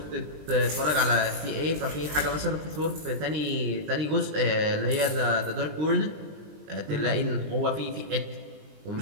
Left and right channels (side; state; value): left; late; 20 ms